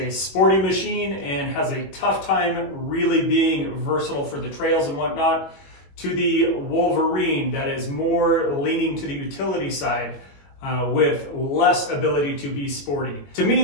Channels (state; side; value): late; right; 21 ms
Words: sporty machine and has a tough time really being versatile for the trails and whatnot, to the Wolverine that is more leaning to the utility side with less ability to be sporty. To me,